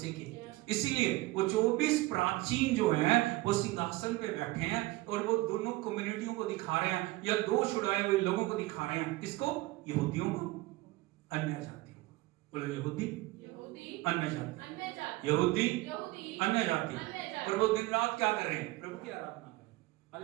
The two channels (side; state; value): left; quieter; 19.8 dB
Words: की इसीलिए वो 24 प्राचीन जो हैं वो सिंहासन पे बैठे हैं और वो दोनों कम्युनिटियों को दिखा रहे हैं, या दो छुड़ाए हुए लोगों को दिखा रहे हैं। किसको? यहूदियों को, अन्य जातियों को। बोलो यहूदी अन्य जाति, यहूदी अन्य जाति। और वो दिन रात क्या कर रहे हैं? प्रभु की आराधना कर रहे हैं।